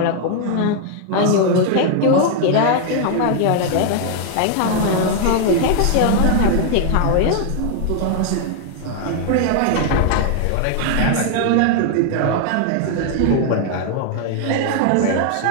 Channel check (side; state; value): both; different; correlation 0.00